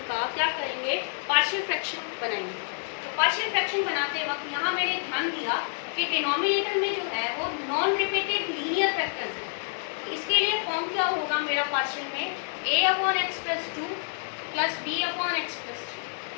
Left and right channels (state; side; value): silent; right; 59 dB below the other